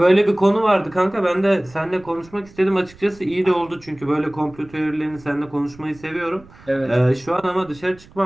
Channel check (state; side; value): noise; right; rumble, 24 dB below the sound